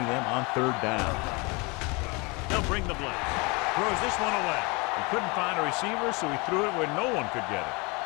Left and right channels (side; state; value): right; quieter; 28.0 dB